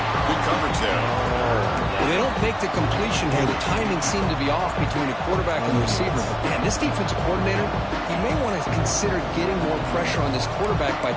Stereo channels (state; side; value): identical; both; correlation 1.00